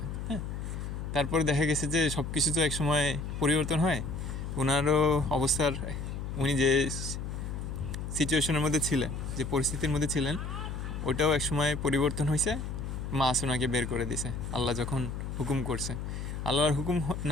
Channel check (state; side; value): noise; left; hum, 5 dB below the sound